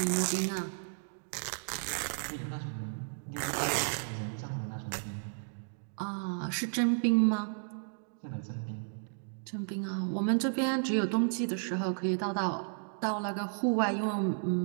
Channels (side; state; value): left; silent; digital silence